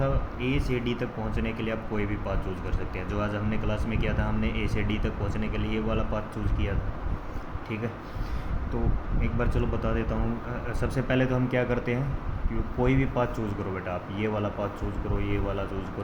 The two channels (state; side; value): identical; both; correlation 1.00